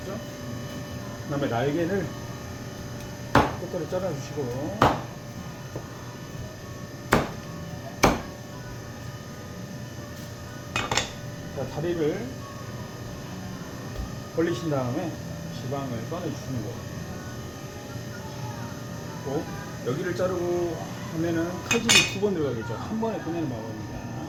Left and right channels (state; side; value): identical; both; correlation 1.00